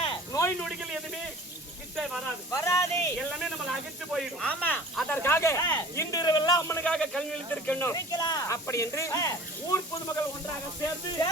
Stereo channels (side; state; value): both; normal; correlation 0.44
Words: நோய் நொடிகள் எதுவுமே வராது, எல்லாமே நம்ம அகற்று போயிடும். ஆமா. அதற்காக இன்று இரவெல்லாம் அம்மனுக்காக கல்வி இழுத்திருக்கணும். அப்படி என்று ஊர் பொதுமக்கள் ஒன்றாக சேர்ந்து